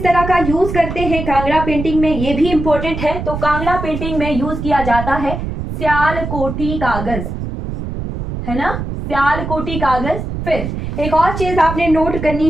तरह का यूज करते हैं कांगड़ा पेंटिंग में, ये भी इंपॉर्टेंट है। तो कांगड़ा पेंटिंग में यूज किया जाता है स्यालकोटी कागज, है ना, स्यालकोटी कागज। फिर एक और चीज आपने नोट करनी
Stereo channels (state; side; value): noise; right; rumble, 6 dB below the sound